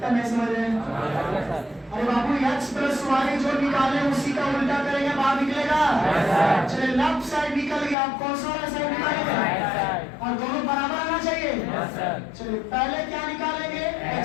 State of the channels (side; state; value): right; drops out; at 8.0 s